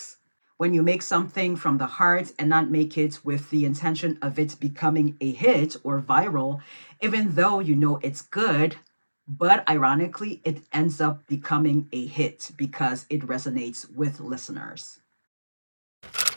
When you make something from the heart and not make it with the intention of it becoming a hit or viral, even though you know it's good, but ironically, it ends up becoming a hit because it resonates with listeners.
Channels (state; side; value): inverted; both; correlation -1.00